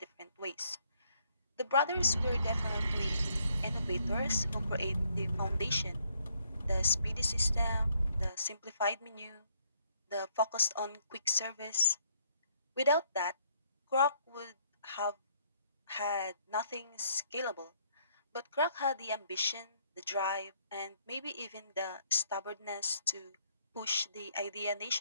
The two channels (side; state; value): both; inverted; correlation -0.68